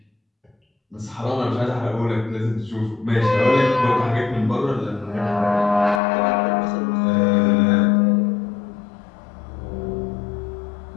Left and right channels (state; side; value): drops out; right; at 6.0 s